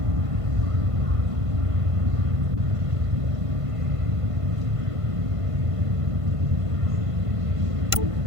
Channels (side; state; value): left; late; 1.5 ms